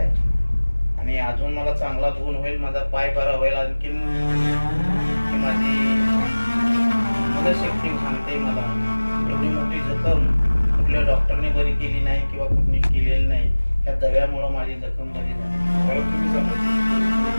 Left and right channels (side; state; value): both; inverted; correlation -1.00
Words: आणि अजून मला चांगला गुण होईल. माझा पाय बरा होईल. आणखीन माझी मनशक्ती सांगते मला एवढी मोठी जखम कुठल्या डॉक्टरने बरी केली नाही किंवा कुठली केलेली नाही. त्या दव्यामुळं माझी जखम बरी झाली.